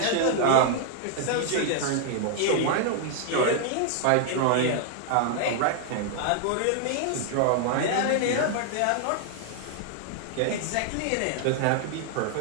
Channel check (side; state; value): both; different; correlation 0.00